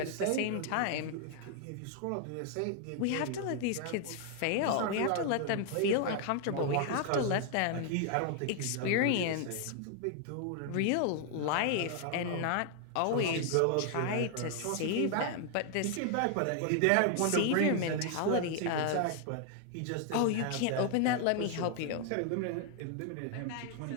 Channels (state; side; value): different; both; correlation 0.00